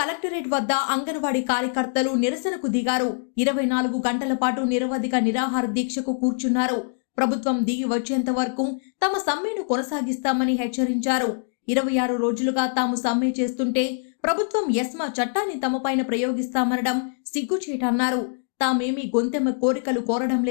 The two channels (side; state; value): right; silent; digital silence